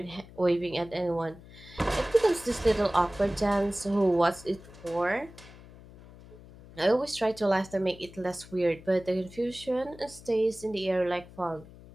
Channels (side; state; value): left; noise; hum, 20 dB below the sound